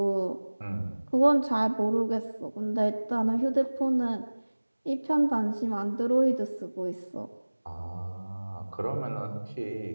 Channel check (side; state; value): both; inverted; correlation -1.00